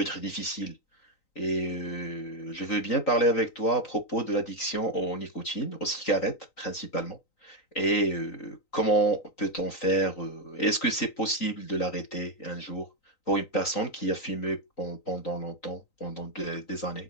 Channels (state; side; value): late; right; 3.9 ms